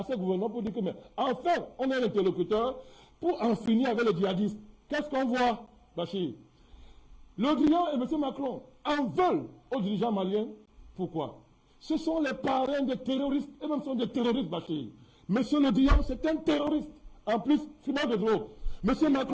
ce gouvernement pour dire que, mais enfin, on est un interlocuteur pour en finir avec les djihadistes. Qu'est-ce qu'on voit, Bachir? Le Drian et M. Macron en veulent aux dirigeants maliens. Pourquoi? Ce sont les parrains des terroristes, et même sont des terroristes, Bachir. M. Le Drian, c'est un terroriste. En plus, fumeur de drogue. M.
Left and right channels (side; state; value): both; identical; correlation 1.00